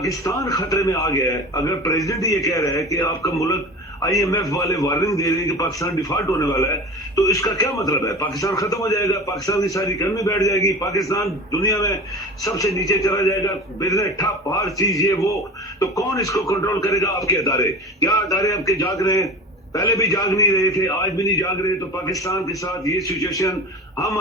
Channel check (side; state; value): both; normal; correlation 0.33